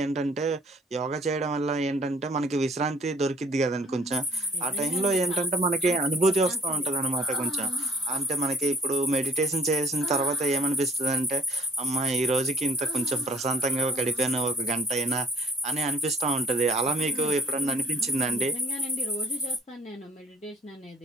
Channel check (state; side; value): normal; both; correlation 0.56